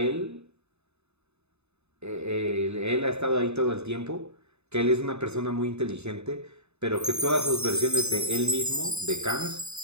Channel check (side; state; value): left; late; 0.80 ms